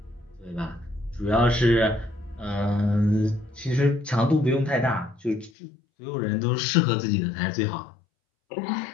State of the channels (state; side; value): drops out; right; at 5.5 s